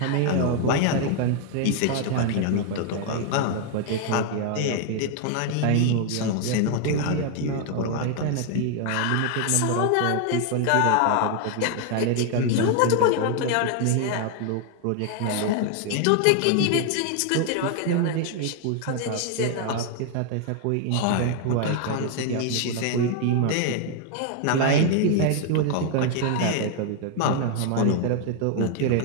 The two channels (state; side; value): different; both; correlation 0.00